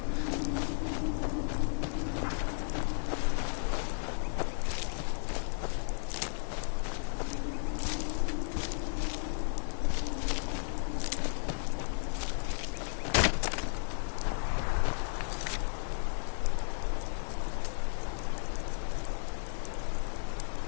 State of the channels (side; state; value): right; silent; digital silence